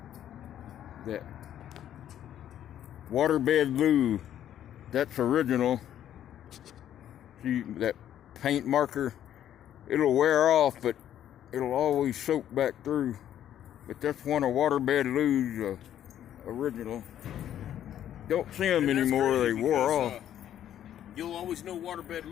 that waterbed loo, that's original. See that paint marker? It'll wear off, but it'll always soak back through. But that's one of waterbed loo's original. Don't see them anymore, they wore off. You'll always know waterbed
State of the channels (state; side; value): quieter; right; 10.9 dB